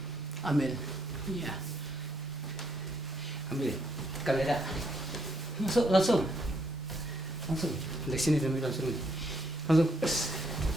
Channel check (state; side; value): normal; both; correlation 0.73